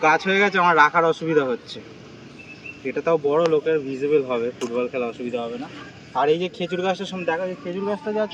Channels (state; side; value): identical; both; correlation 1.00